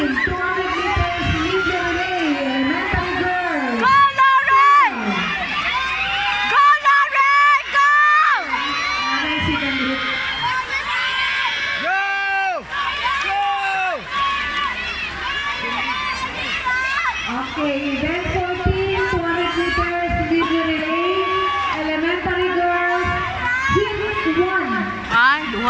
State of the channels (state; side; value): identical; both; correlation 1.00